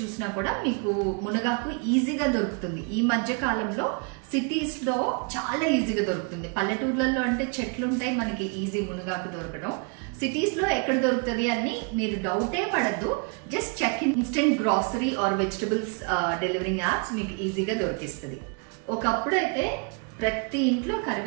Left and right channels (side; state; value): left; quieter; 35.2 dB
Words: కూడా మీకు మునగాకు ఈజీగా దొరుకుతుంది. ఈ మధ్య కాలంలో సిటీస్ లో చాలా ఈజీగా దొరుకుతుంది. పల్లెటూర్లలో అంటే చెట్లు ఉంటాయి, మనకి ఈజీ మునగాకు దొరకడం. సిటీస్ లో ఎక్కడ దొరుకుతుంది అని మీరు డౌటే పడద్దు. Just check instant grocery or vegetables delivering apps మీకు ఈజీగా దొరికిస్తుంది. ఒకప్పుడు అయితే ప్రతి ఇంట్లో